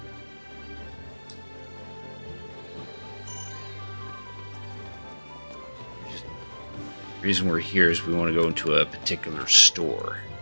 The reason we're here is we want to go into a particular store.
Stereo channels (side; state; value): both; inverted; correlation -1.00